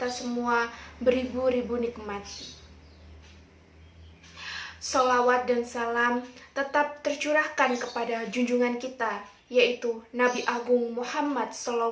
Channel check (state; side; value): identical; both; correlation 1.00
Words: semua beribu-ribu nikmat. Salawat dan salam tetap tercurahkan kepada junjungan kita, yaitu Nabi Agung Muhammad